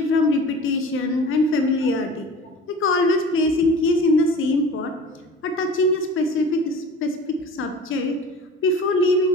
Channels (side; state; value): both; normal; correlation 0.40